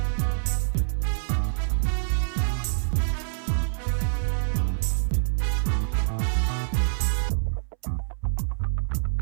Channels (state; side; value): silent; left; 61 dB below the other